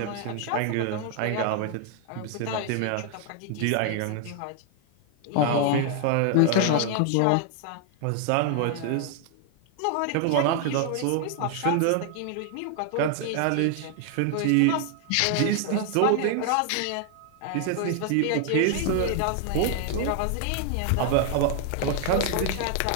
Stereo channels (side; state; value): both; different; correlation 0.00